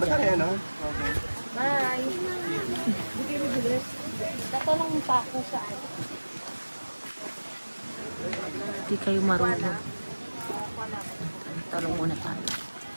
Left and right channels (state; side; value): inverted; both; correlation -1.00